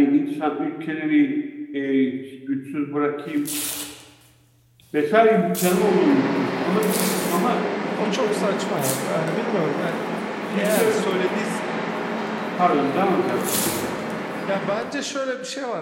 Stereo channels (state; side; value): identical; both; correlation 1.00